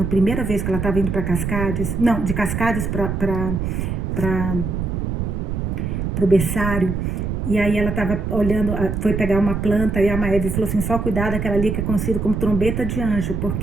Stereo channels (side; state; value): right; noise; rumble, 2 dB below the sound